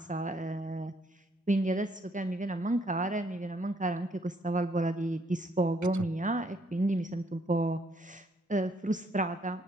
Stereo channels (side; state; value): both; normal; correlation 0.69